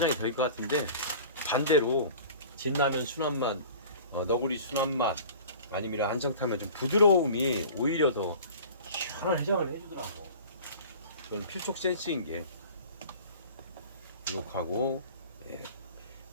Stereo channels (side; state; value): both; inverted; correlation -0.43